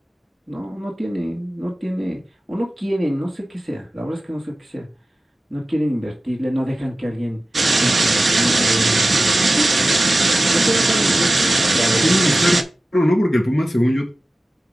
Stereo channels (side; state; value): both; normal; correlation 0.95